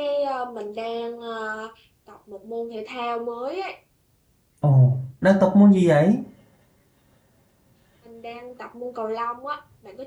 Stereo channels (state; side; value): identical; both; correlation 1.00